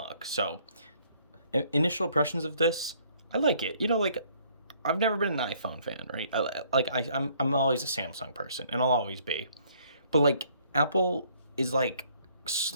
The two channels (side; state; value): both; inverted; correlation -0.63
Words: So initial impressions of this, I like it. You know, like I've never been an iPhone fan, right? I'm always a Samsung person, and I'll always be. But like Apple is like